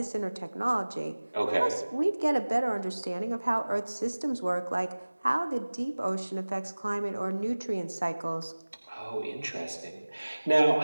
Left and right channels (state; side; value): inverted; both; correlation -1.00